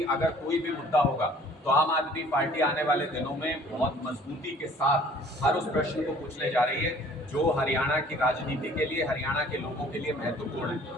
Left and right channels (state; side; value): normal; both; correlation 0.53